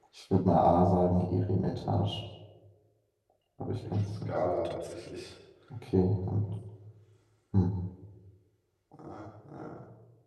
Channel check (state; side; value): identical; both; correlation 1.00